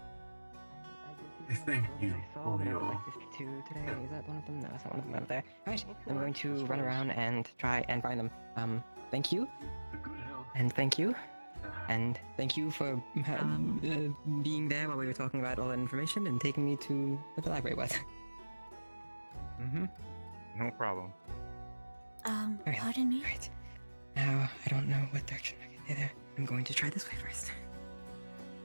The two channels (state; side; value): inverted; both; correlation -1.00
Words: I thank you saw for that I your would like this too today. Is that one of them? No, it's not one of them over there. Alright, I'm going to run around and try and find them. Thank you, The good health. and thank you, and thank you for being there while we were talking about all that information and taking me to where the library was. Mm-hmm. No problem. Alright, Pardon me? Alright. Now, I don't know what direction I can either. I'm going to try this way first.